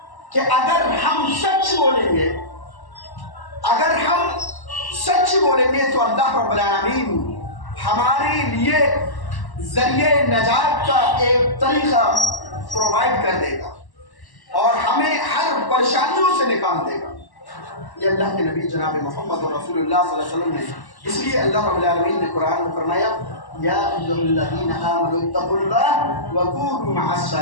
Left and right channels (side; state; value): right; late; 1.1 ms